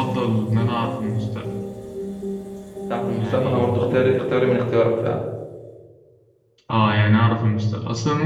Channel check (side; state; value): both; identical; correlation 1.00